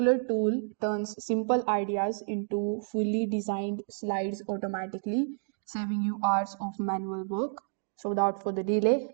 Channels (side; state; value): left; silent; digital silence